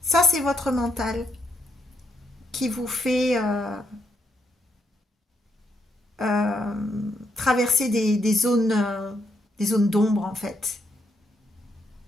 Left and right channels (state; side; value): normal; both; correlation 0.75